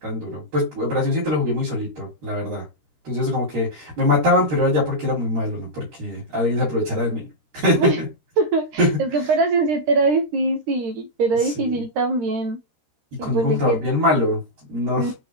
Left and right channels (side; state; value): left; late; 13 ms